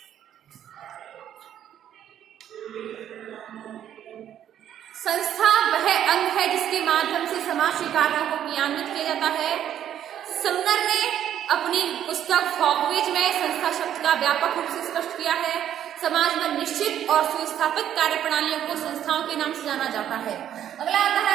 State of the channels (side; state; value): left; quieter; 10.5 dB